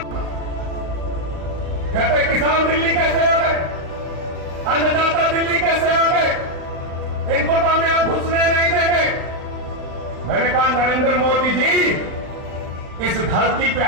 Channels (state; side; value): late; left; 36 ms